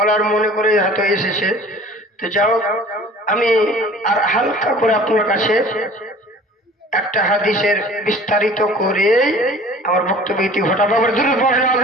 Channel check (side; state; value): both; normal; correlation 0.46